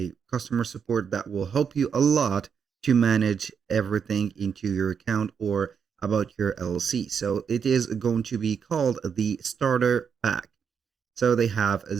customer support that will help you a lot to manage everything into your account or about your LLC. So it is going to be called the starter pack. So they have a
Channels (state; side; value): quieter; left; 6.9 dB